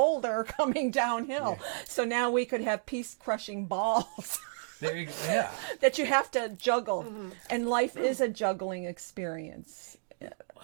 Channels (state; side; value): silent; left; digital silence